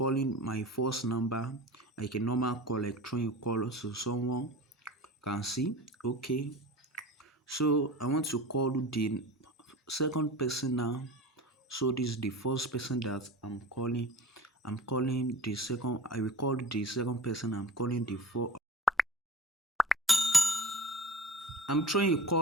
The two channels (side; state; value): both; normal; correlation 0.37